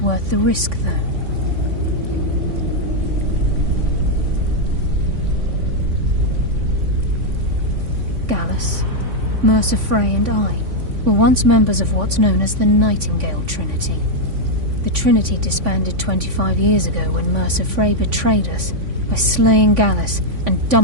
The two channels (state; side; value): late; left; 3.5 ms